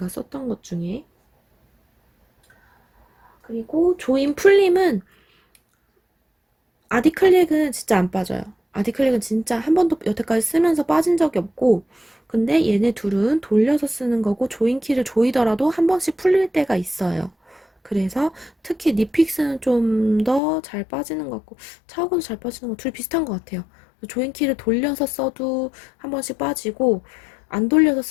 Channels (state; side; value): drops out; right; at 20.4 s